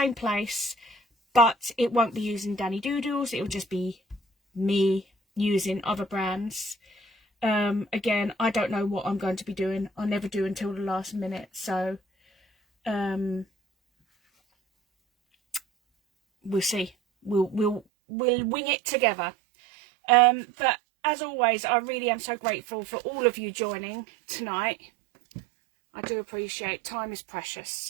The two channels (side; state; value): left; drops out; at 17.9 s